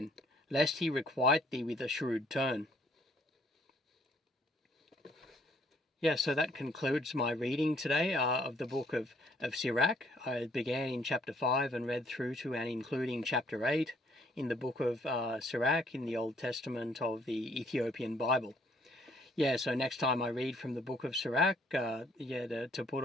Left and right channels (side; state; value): both; normal; correlation 0.64